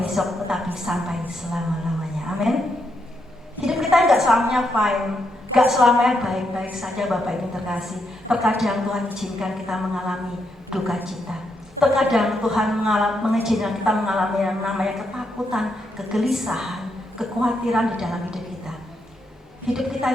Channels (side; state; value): both; normal; correlation 0.80